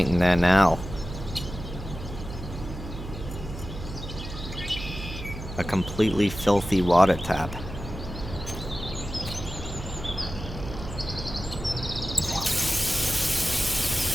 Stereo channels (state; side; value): noise; right; hum, 9 dB below the sound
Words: there now? A completely filthy water tap.